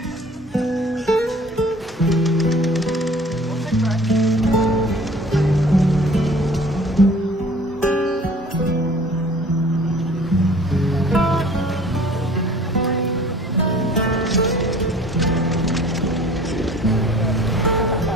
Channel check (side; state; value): both; normal; correlation 0.49